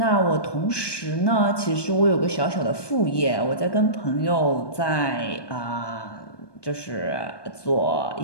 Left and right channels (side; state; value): right; late; 1.2 ms